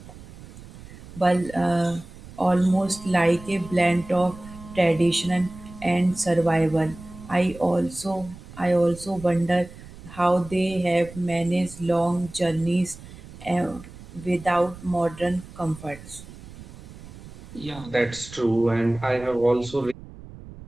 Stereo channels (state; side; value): noise; right; rumble, 17 dB below the sound